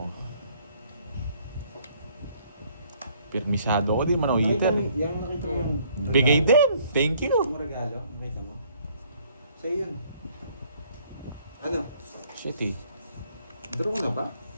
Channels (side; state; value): both; inverted; correlation -0.62